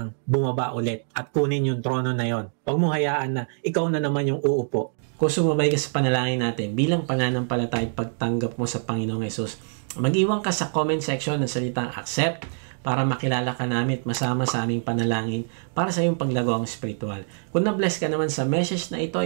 bumaba ulit at kunin yung trono na yon. Huwag mo hayaan na ikaw na naman yung uupo. Kung sumabay ka sa panalangin natin, bilang pananampalataya at pagtanggap mo sa Panginoong Yesus, mag-iwan ka sa comment section ng salitang accept para makilala ka namin at masama sa aming panalangin para sa iyong paglagawang spiritual. Kung na-bless ka naman sa message na ito,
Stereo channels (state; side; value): silent; left; 62 dB below the other